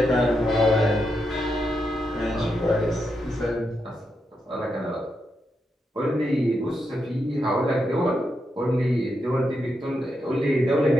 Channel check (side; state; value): both; normal; correlation 0.84